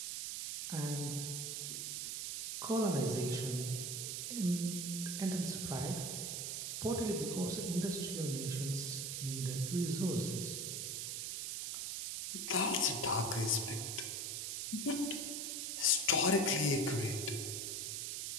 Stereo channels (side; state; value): right; noise; hiss, 3 dB below the sound